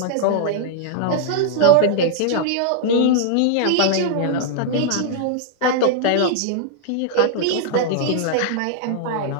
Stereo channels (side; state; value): both; different; correlation -0.01